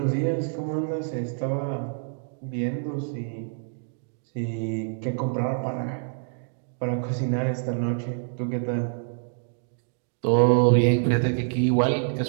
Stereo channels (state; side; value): silent; left; digital silence